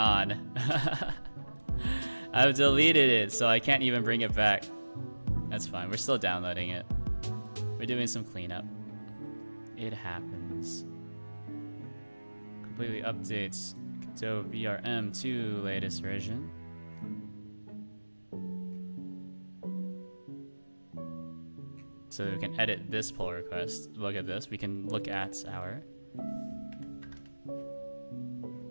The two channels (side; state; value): both; inverted; correlation -1.00